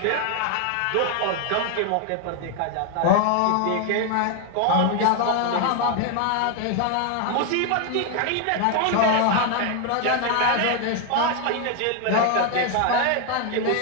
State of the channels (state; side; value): different; both; correlation 0.01